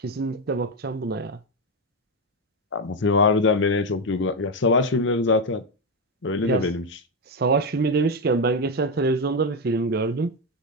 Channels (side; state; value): both; normal; correlation 0.08